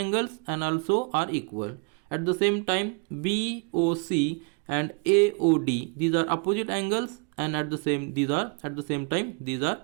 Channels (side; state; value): left; quieter; 34.7 dB